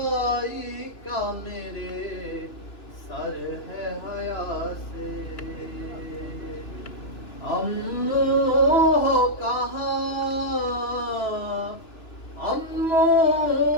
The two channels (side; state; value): right; late; 2.9 ms